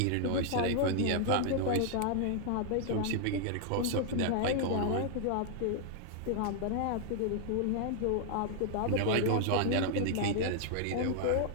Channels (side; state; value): both; different; correlation 0.00